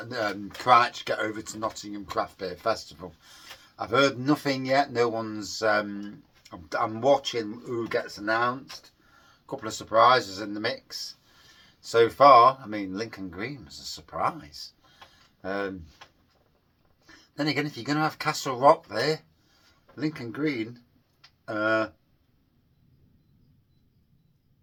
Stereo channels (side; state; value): both; identical; correlation 1.00